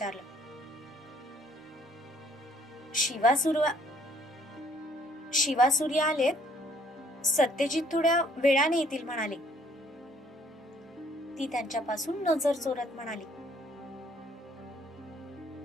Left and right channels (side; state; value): both; normal; correlation 0.62